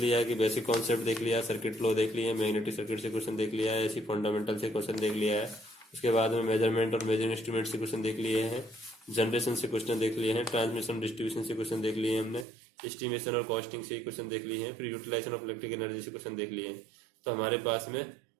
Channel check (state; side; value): drops out; left; at 12.5 s